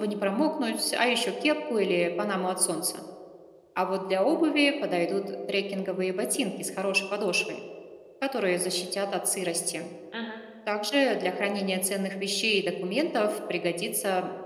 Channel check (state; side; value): identical; both; correlation 1.00